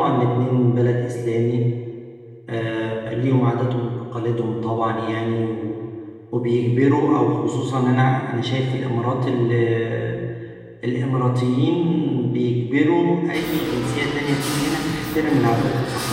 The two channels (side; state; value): both; identical; correlation 1.00